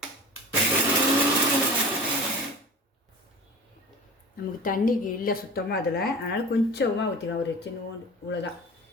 நமக்கு தண்ணிக்கு இல்லை சுத்தமாக அதில், அதனால் கொஞ்சமாக ஊற்றிக்கலாம். ஒரு சின்ன இவ்வளோதான்,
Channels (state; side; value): normal; both; correlation 0.37